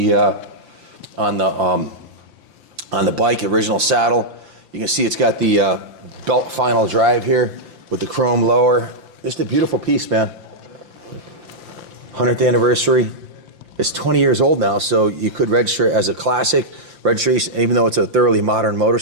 bike, original saddle. You can see it's got the belt final drive here with the chrome lower. Just a beautiful piece, man. 100th anniversary. It's 20 years old now, so you could register it as a classic. Registration, even though it's a thoroughly modern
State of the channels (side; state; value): left; late; 5.8 ms